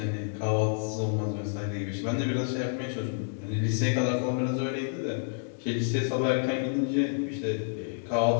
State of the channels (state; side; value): silent; right; digital silence